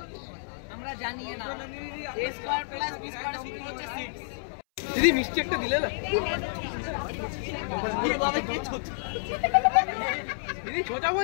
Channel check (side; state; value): right; silent; 58 dB below the other